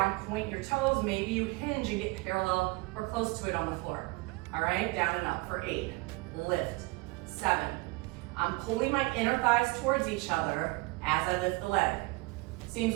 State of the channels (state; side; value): quieter; left; 24.2 dB